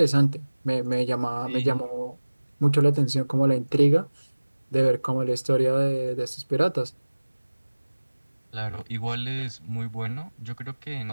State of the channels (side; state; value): both; inverted; correlation -1.00